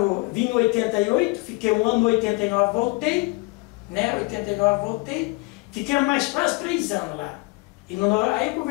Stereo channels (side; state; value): right; quieter; 27.0 dB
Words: vim em 88, fiquei um ano no 89, voltei, né? 89 voltei, fiquei mais quase 3 anos lá. E aí